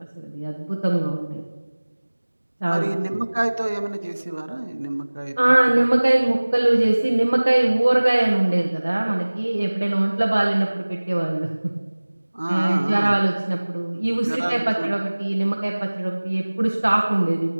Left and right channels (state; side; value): inverted; both; correlation -1.00